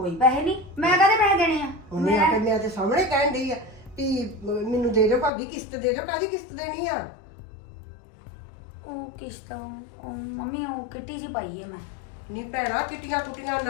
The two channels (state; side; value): drops out; right; at 5.3 s